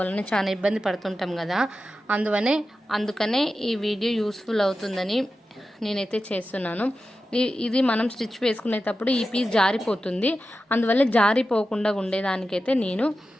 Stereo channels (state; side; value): normal; both; correlation 0.92